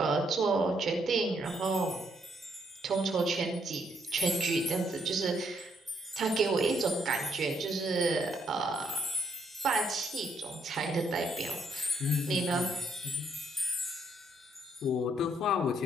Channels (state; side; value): normal; both; correlation 0.72